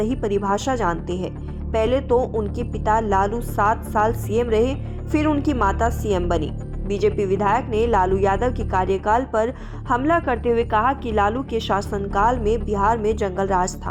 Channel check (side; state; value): both; identical; correlation 1.00